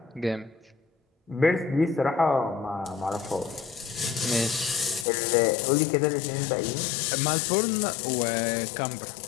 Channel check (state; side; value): drops out; right; at 5.1 s